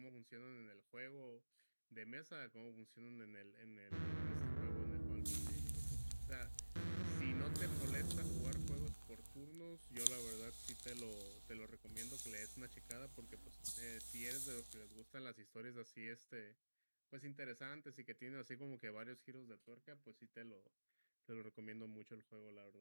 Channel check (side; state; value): both; inverted; correlation -1.00